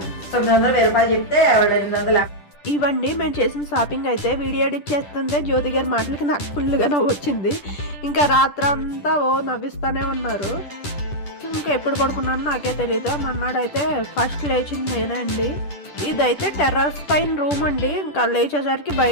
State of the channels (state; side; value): late; right; 10 ms